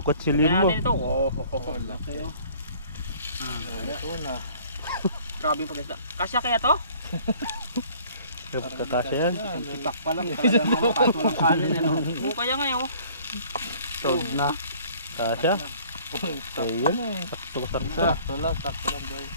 Kukutsilin Kaya mo. natin ito. Oh, Laki oh. Ito na. grabe yung pag-isda. Kasya kaya to? Kakasya yan. Tipak pa lang, talagang ano, kaso lang kanin, ano. Oo, kaya nga yun. Sold na. Kasya. Ayun. Sakto-sakto. Sakto lang boy.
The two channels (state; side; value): inverted; both; correlation -0.54